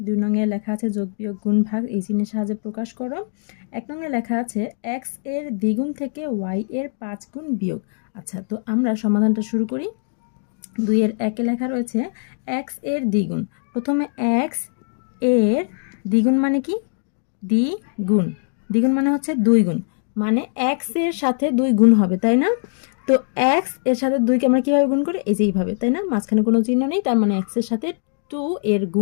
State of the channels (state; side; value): silent; right; 58 dB below the other